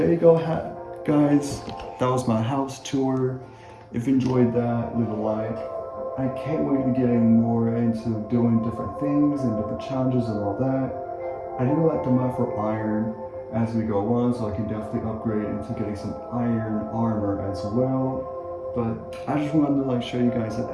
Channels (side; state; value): both; identical; correlation 1.00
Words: you go, guys. That was my house tour. If you enjoyed that, leave a like. I can't wait to getting more into doing different things and different challenges and all that. I do like to mine for iron as we go on, so I can definitely upgrade into getting some iron armor as well. But I just wanted to show you guys that